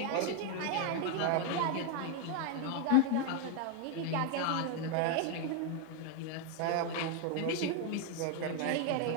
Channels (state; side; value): different; both; correlation 0.01